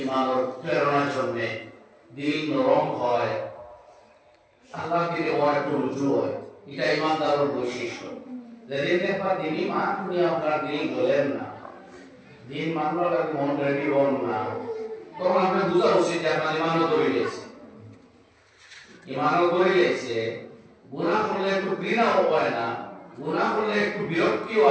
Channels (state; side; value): identical; both; correlation 1.00